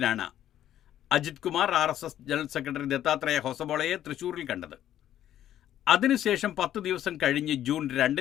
Ajith Kumar RSS general secretary Dattatreya ഹൊസബോളയെ തൃശൂരിൽ കണ്ടത്. അതിനുശേഷം 10 ദിവസം കഴിഞ്ഞ് ജൂൺ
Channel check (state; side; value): quieter; right; 11.6 dB